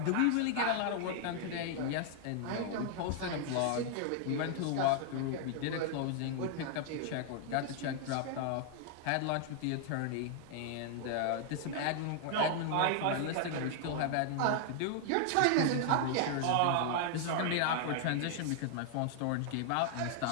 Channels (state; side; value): different; both; correlation 0.00